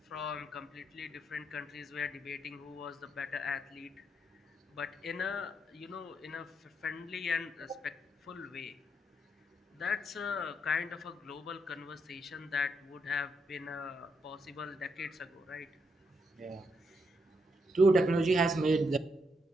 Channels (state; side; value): normal; both; correlation 0.79